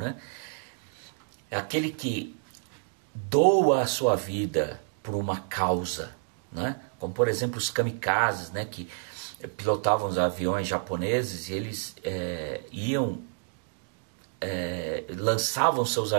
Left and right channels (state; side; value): silent; left; 59 dB below the other